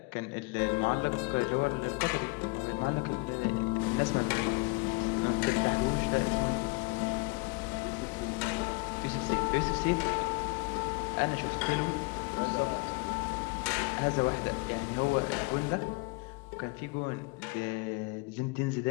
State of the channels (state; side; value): quieter; right; 27.6 dB